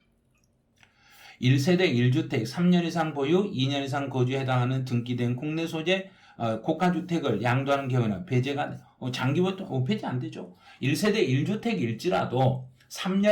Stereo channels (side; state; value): both; identical; correlation 1.00